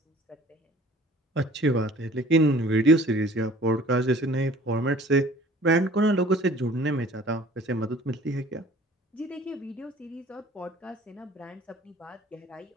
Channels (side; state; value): both; normal; correlation 0.50